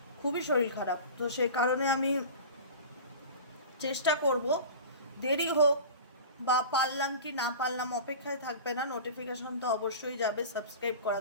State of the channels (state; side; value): inverted; both; correlation -0.36